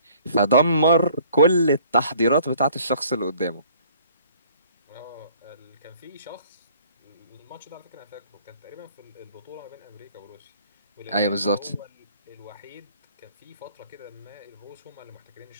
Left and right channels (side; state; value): both; inverted; correlation -0.56